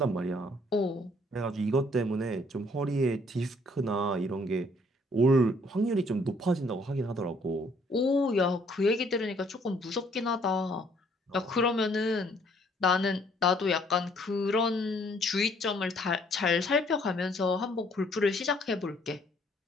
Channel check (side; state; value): both; normal; correlation 0.63